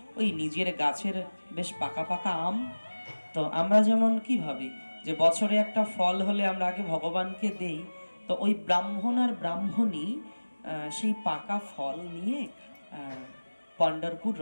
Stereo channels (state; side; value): inverted; both; correlation -1.00